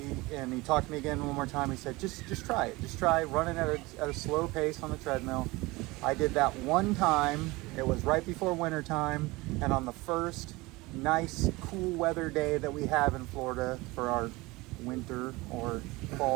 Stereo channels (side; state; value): left; quieter; 22.2 dB